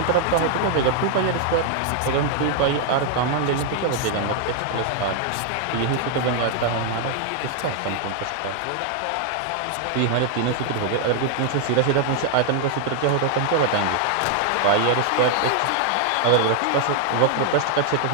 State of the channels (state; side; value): different; both; correlation 0.00